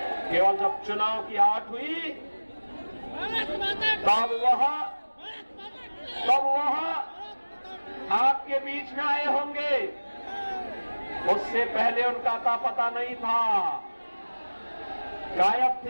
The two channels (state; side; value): inverted; both; correlation -1.00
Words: केवल जब चुनाव की आट हुई तब वहां आपके बीच में आए होंगे, उससे पहले उनका अता पता नहीं था, गायब